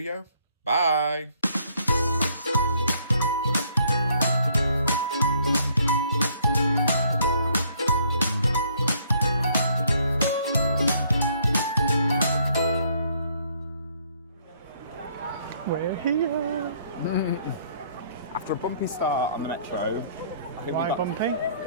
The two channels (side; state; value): both; inverted; correlation -0.65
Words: Bye! We're here. After a bumpy start on the metro, I think Why bumpy?